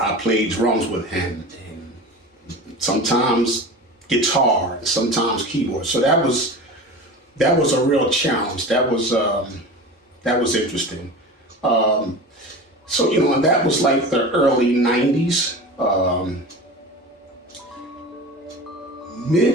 played drums with him. And sometimes guitar, sometimes keyboard. So that was a real challenge. That was interesting. And that was like the early 90s.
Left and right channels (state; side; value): normal; both; correlation 0.33